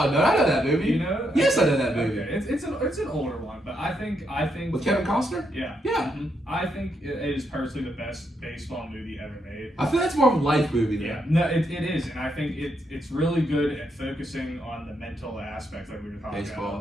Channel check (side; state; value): both; normal; correlation 0.79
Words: unknown. I know that movie. You know? Yes, I know that movie. Okay. It's an older one, but I think With Kevin Costner? yeah. Yeah. Mhm. I think it is personally the best baseball movie ever made. I feel that's more of a life movie, though. Yeah, no, it is, and I think it's really good at focusing on the mental aspect, like we were talking about